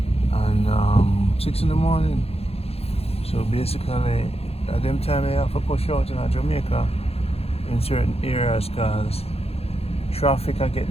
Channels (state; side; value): late; right; 0.29 ms